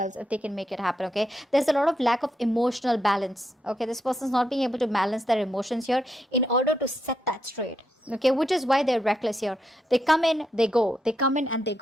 if they can make it happen, okay? There's a lot of lack of emotional balance, okay? This person's not being able to balance their emotions here in order to set that straight, okay? Which is why they're reckless here. They come in, they go. They come in and they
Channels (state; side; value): normal; both; correlation 0.81